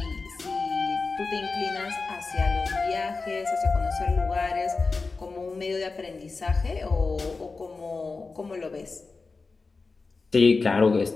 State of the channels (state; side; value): quieter; right; 4.1 dB